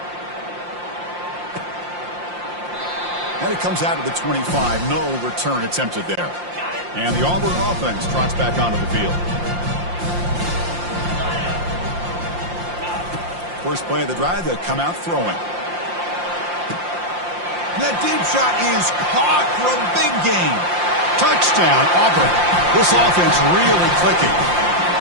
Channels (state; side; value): late; left; 5.7 ms